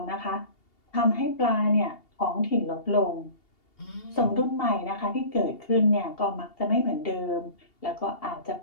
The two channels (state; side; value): late; right; 2.8 ms